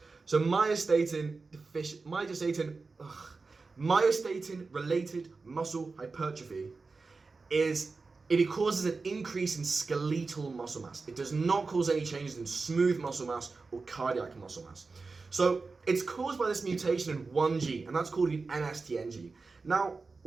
So myostatin related muscle hypertrophy it causes an increase in skeletal muscle mass. It does not cause any changes in smooth muscle mass or cardiac muscle mass. So it's caused by this mutation in one gene, and that's called an MSTN gene. Now,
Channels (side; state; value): left; quieter; 4.1 dB